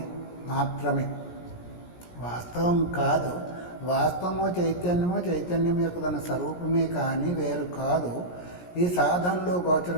మాత్రమే, వాస్తవం కాదు. వాస్తవము చైతన్యం యొక్క తన స్వరూపమే కానీ వేరు కాదు. ఈ సాధనలో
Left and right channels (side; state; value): right; late; 17 ms